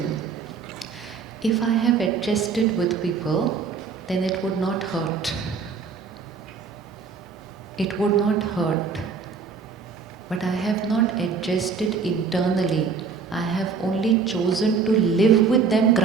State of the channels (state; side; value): quieter; left; 5.4 dB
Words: If I have adjusted with people, then it would not hurt. It would not hurt. But I have not adjusted internally. I have only chosen to live with them